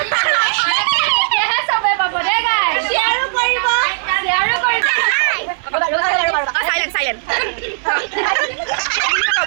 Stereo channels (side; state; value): left; silent; digital silence